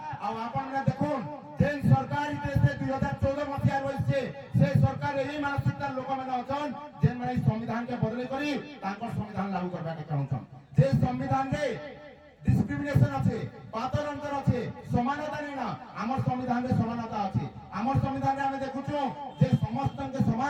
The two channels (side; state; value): both; identical; correlation 1.00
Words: আর আপনারা দেখুন যে সরকার দেশে 2014 মସିହା রয়েছে সেই সরকার এই মানসিকতার লোক মানে অছন যে মানে সংবিধান কে বদলে করি তাঙ্কর সংবিধান লাগু করবা কে চাহুছন যে সংবিধান রে ডিসক্রিমিনেশন আছে পাতর অন্তর আছে সমানতা নেই না আমার সংবিধানে সমানতা আছে আমার সংবিধানে আমি দেখুছু যে সমস্তকে